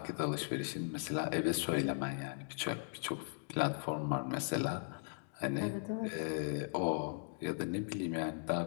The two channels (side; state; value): right; silent; digital silence